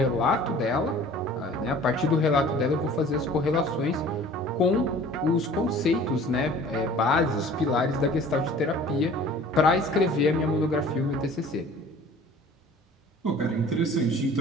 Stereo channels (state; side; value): normal; both; correlation 0.47